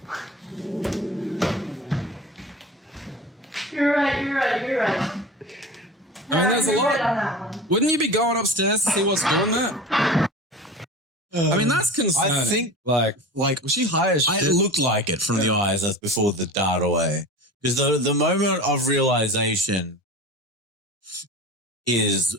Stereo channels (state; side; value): normal; both; correlation 0.33